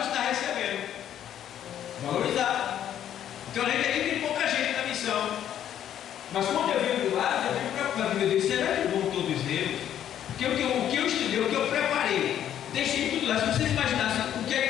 que está recebendo. Valorizar. Então, a gente aqui tem pouca gente na missão. Mas quando eu venho do lado, eu fico preocupado. Meu Deus, será que vão todos eles? Porque o que eu estudei, o que eu preparei, deixei tudo lá. Se vocês imaginassem,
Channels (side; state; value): right; quieter; 10.5 dB